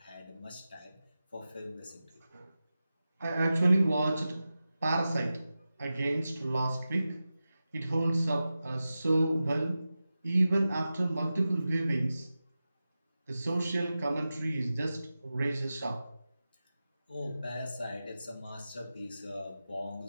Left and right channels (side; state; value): both; inverted; correlation -0.94